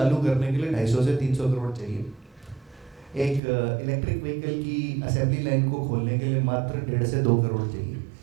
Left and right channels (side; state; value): left; drops out; at 3.4 s